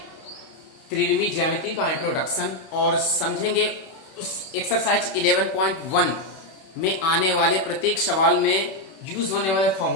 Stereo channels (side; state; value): right; late; 31 ms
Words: त्रिविमी ज्यामिति का इंट्रोडक्शन और समझेंगे उस एक्सरसाइज 11.1 में आने वाले प्रत्येक सवाल में यूज होने वाले